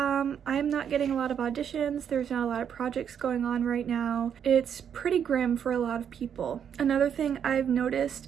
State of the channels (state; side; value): quieter; left; 8.3 dB